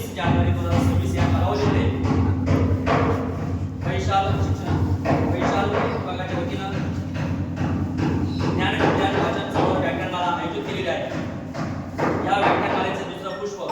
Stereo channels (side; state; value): both; identical; correlation 1.00